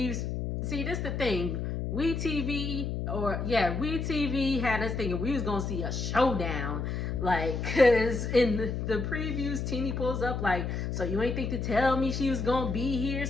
See, this is the thing. WeTV had us thinking we was going to see a showdown. Like, because in the previews, Teeny pulls up like, so you ain't think to tell me she was going to be here?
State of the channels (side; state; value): left; noise; hum, 3 dB below the sound